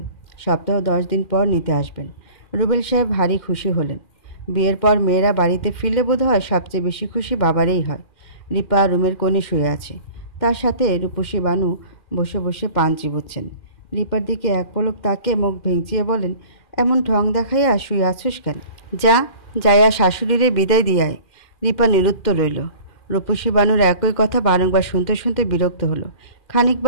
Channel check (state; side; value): late; right; 2.4 ms